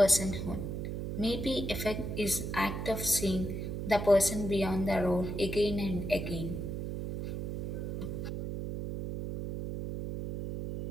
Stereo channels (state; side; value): noise; right; hum, 4 dB below the sound